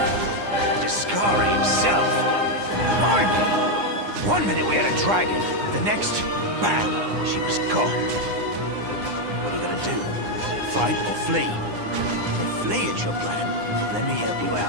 Discari himself. Blimey! One minute we had a dragon, the next, bam, she was gone. What are you gonna do? Fight or flee? If flee is your plan, let me help you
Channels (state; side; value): late; left; 9.8 ms